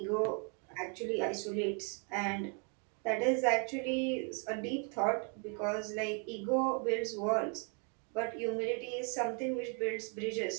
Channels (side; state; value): left; quieter; 39.4 dB